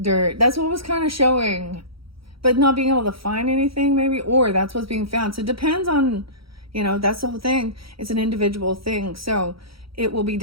That's what was kind of showing, but not being able to find anything maybe, or that's what's being found. So it depends on, you know, that's the whole thing. It's an individual thing. So it will be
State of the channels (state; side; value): late; left; 0.75 ms